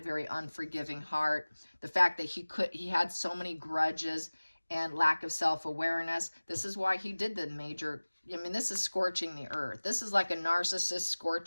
unforgiving heart, the fact that he had so many grudges and lack of self-awareness. This is why he did the major, this is scorching the earth. This is like a narcissist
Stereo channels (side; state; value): both; inverted; correlation -1.00